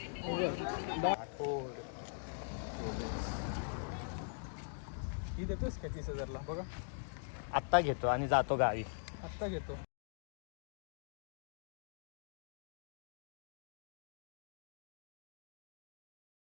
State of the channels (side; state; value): right; silent; digital silence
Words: ही देतोस का 30,000ला? बघा आत्ता घेतो आणि जातो गावी. आत्ता घेतो.